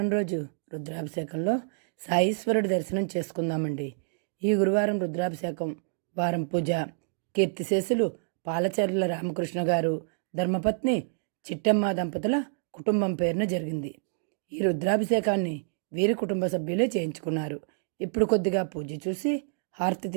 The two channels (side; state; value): left; silent; digital silence